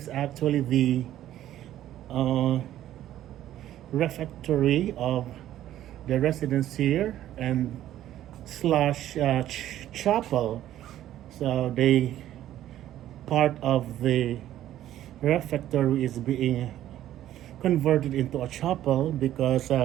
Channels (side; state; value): left; quieter; 12.7 dB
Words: actually the refectory of the residents here and slash chapel. So they part of the refectory is being converted into a chapel because